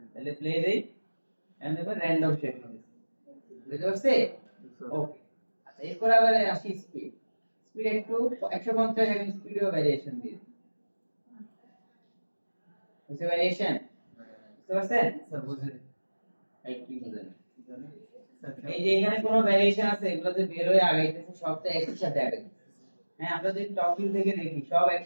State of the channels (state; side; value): inverted; both; correlation -1.00